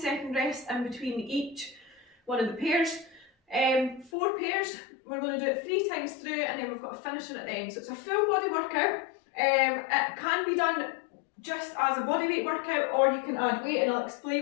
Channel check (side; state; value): right; drops out; at 4.1 s